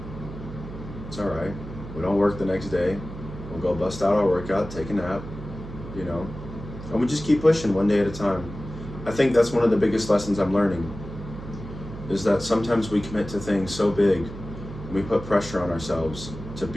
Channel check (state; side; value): noise; right; hum, 11 dB below the sound